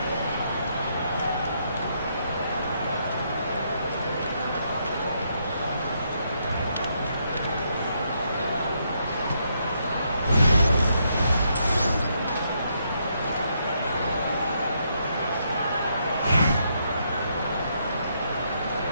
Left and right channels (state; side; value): inverted; both; correlation -0.76